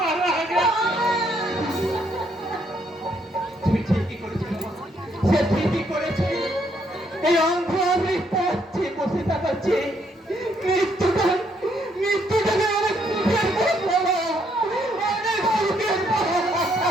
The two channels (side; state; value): both; normal; correlation 0.72